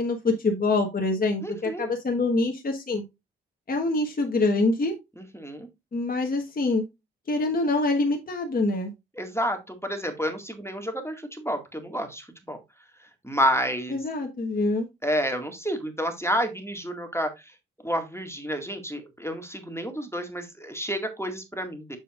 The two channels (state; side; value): normal; both; correlation 0.53